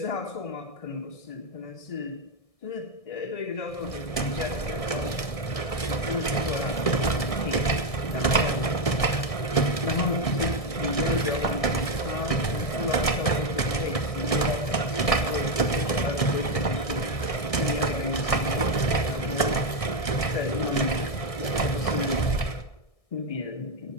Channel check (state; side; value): late; right; 1.6 ms